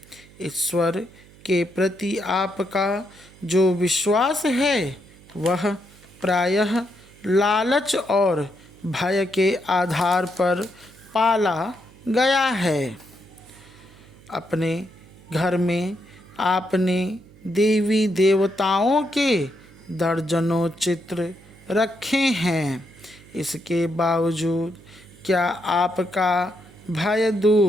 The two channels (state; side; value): noise; right; hum, 24 dB below the sound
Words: ईश्वर के प्रति आपका जो विश्वास है वह प्रायः लालच और भय के आधार पर पाला गया है। अपने घर में आपने देवी देवताओं के दर्जनों चित्र रखे हैं। इसके बावजूद क्या आपका भय